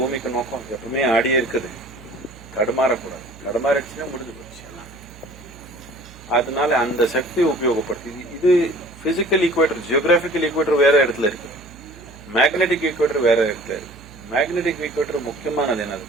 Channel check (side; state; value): right; noise; hum, 21 dB below the sound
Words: நோக்கம். எப்பவுமே ஆடியே இருக்குது, தடுமாறக்கூடாது. தடுமாறிடுச்சுன்னா முடிஞ்சு போச்சு. அதனால அந்த சக்தி உபயோகப்படுத்தி இது பிசிக்கல் ஈக்குவேட்டர், ஜியோகிராபிக்கல் ஈக்குவேட்டர் வேற இடத்துல இருக்கு, மேக்னெட்டிக் ஈக்குவேட்டர் வேற இடத்துல இருக்கு. மேக்னெட்டிக் ஈக்குவேட்டர் முக்கியமானது